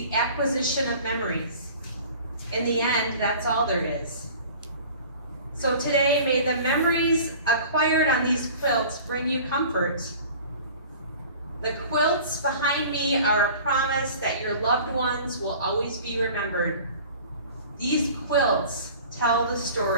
acquisition of memories. In the end, that's all there is." So today, may the memories acquired on these quilts bring you comfort. The quilts behind me are a promise that your loved ones will always be remembered. These quilts tell the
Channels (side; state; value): both; inverted; correlation -0.44